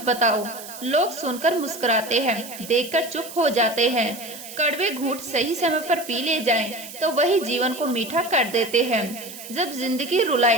बताओ, लोग सुनकर मुस्कुराते हैं, देखकर चुप हो जाते हैं। कड़वे घूंट सही समय पर पी ले जाएं, तो वही जीवन को मीठा कर देते हैं। जब जिंदगी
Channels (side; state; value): right; noise; hiss, 13 dB below the sound